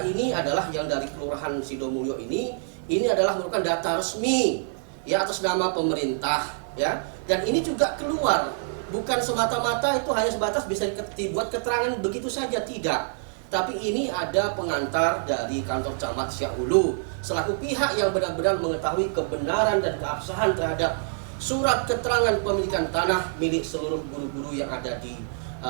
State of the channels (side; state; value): left; silent; digital silence